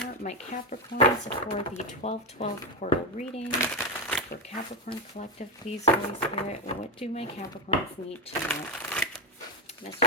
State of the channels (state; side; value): normal; both; correlation 0.10